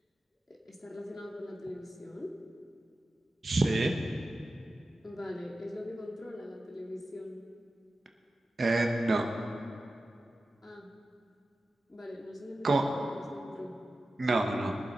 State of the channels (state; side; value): normal; both; correlation 0.93